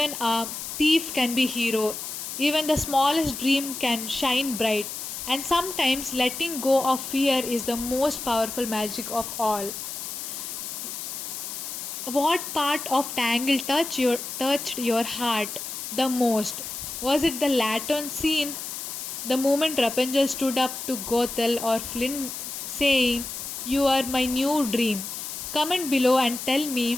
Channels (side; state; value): left; noise; hiss, 7 dB below the sound